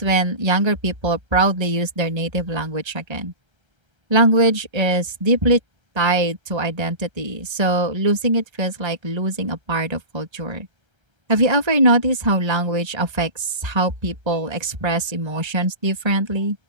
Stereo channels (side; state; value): left; late; 1.3 ms